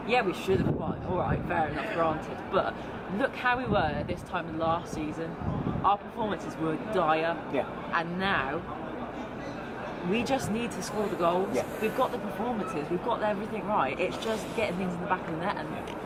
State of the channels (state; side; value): identical; both; correlation 1.00